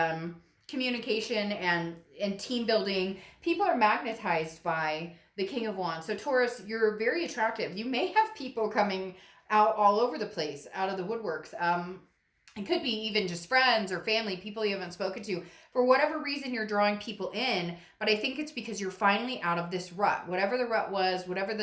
communication and team building. People are magnetized by the King of Wands. So Taurus, you're very attractive. You may have people coming out all over the place, out of the woodworks. It could be even just friends or family, people you haven't spoken to. For whatever reason, you're drawing people in, but I think it's because you're finally out of this rut. Whatever the rut was, whatever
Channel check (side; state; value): both; identical; correlation 1.00